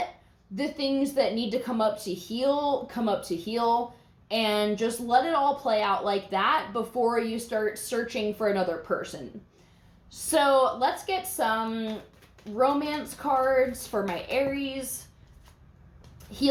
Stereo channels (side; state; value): both; identical; correlation 1.00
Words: the things that need to come up to heal, and just let it all play out like that before you start searching for another person. So let's get some romance cards for my Aries.